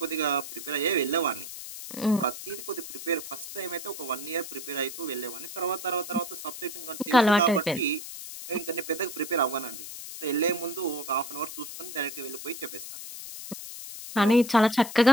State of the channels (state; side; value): noise; left; hiss, 10 dB below the sound